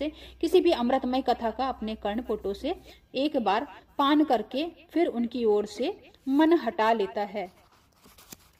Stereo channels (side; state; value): both; identical; correlation 1.00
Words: किसी भी अमृतमय कथा का अपने कर्णपुटों से एक बार पान करके फिर उनकी ओर से मन हटा लेता है।